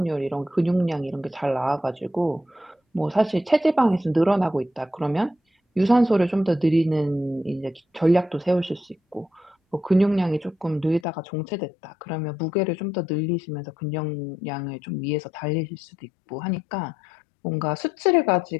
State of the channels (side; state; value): right; drops out; at 11.1 s